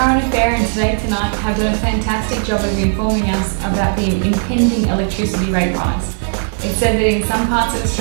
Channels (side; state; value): left; silent; 67 dB below the other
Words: affair and Today Tonight have done a fantastic job of informing us about the impending electricity rate rise. It said that in some parts of